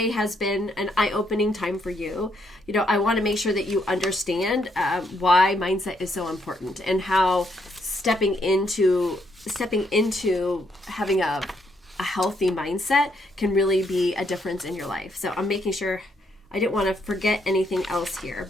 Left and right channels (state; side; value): normal; both; correlation 0.74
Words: has been an eye-opening time for you. I want to make sure that you understand why mindset is so important, and how stepping into having a healthy mindset can really be a difference in your life. So I'm making sure, I didn't want to forget anything else here,